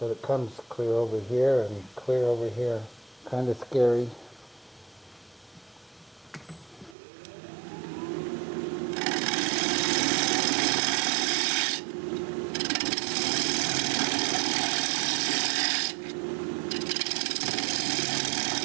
it comes clear over here and clear over here. Kind of scary.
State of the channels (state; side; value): drops out; left; at 7.0 s